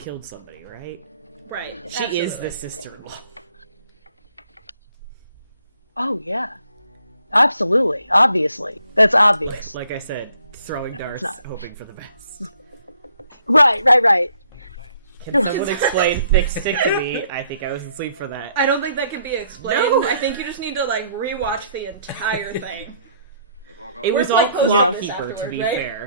somebody, right? Right. She is absolutely. the sister-in-law. Oh yeah. Absolutely. Obviously. That's obvious. Like I said, throwing darts, not. hoping for the best. Right. Can someone explain thick stick to me? I think I was asleep for that. I don't think that can be explained. No. I think you just need to like rewatch the entire thing. It We're was all like posting Clock this Keeper, to afterwards, be right?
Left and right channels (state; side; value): inverted; both; correlation -0.66